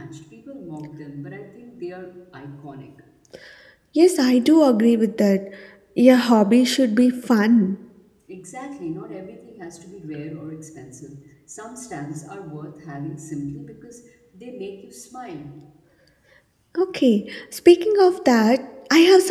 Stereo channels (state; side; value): identical; both; correlation 1.00